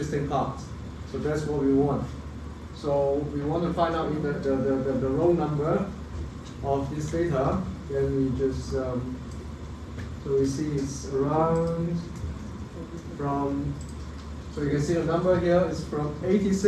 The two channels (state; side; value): identical; both; correlation 1.00